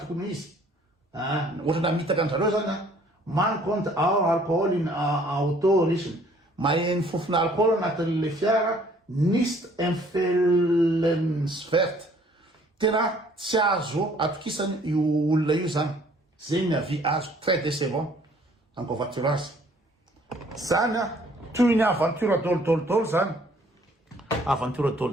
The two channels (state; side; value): normal; both; correlation 0.59